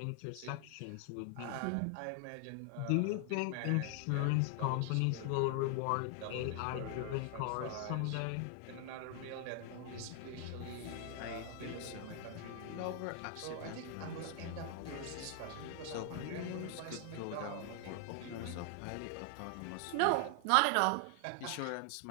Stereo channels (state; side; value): different; both; correlation 0.00